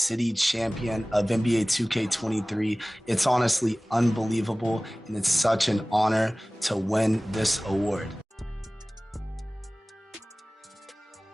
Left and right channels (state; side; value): normal; both; correlation 0.98